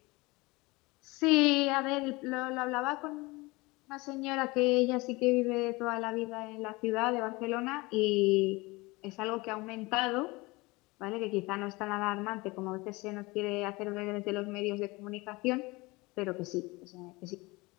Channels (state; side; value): quieter; right; 23.5 dB